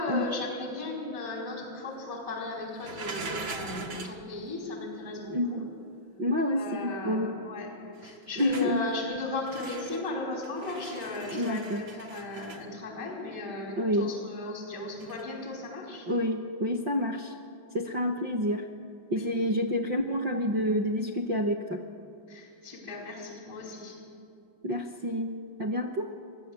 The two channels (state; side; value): late; left; 6.0 ms